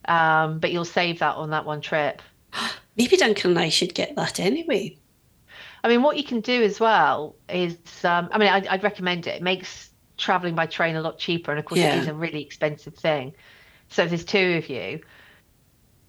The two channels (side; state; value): both; identical; correlation 1.00